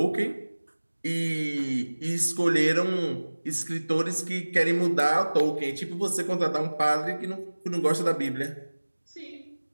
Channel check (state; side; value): inverted; both; correlation -1.00